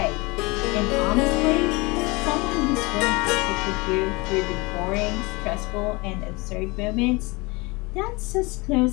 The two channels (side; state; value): right; quieter; 25.4 dB